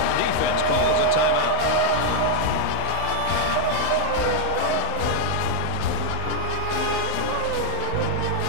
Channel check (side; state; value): both; different; correlation -0.01